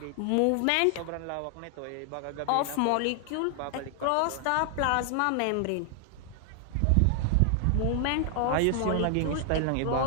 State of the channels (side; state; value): both; different; correlation 0.00